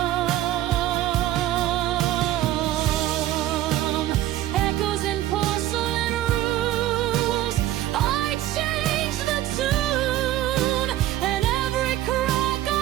Echoes in porcelain rooms, I changed the tune, and every crack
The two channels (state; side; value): quieter; left; 13.8 dB